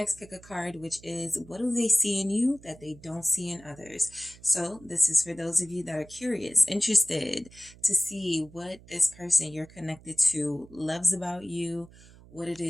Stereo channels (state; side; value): noise; right; hum, 22 dB below the sound